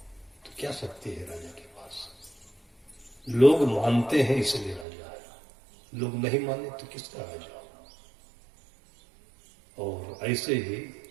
तो क्या शक्ति है राजा के पास? लोग मानते हैं इसलिए राजा है, लोग नहीं माने तो किसका राजा? और ऐसे ही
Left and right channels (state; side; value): drops out; left; at 4.9 s